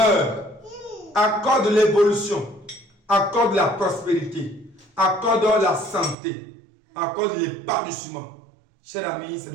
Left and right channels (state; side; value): drops out; left; at 6.2 s